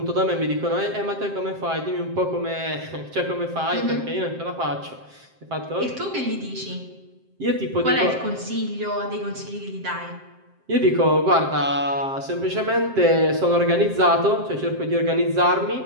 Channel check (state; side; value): late; left; 7.6 ms